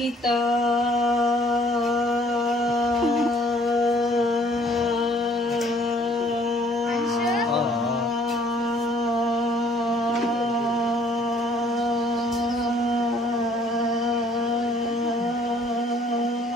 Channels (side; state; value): both; normal; correlation 0.60